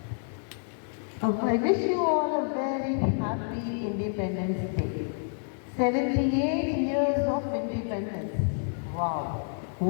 I wish you all a very happy Independence Day. 78 years of independence. Wow,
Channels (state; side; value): silent; right; 59 dB below the other